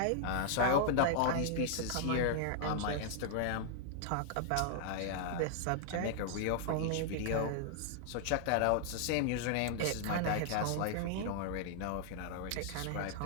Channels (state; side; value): different; both; correlation -0.01